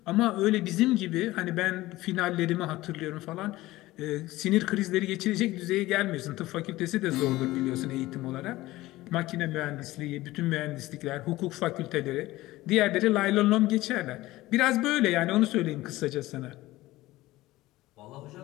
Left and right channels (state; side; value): quieter; right; 17.8 dB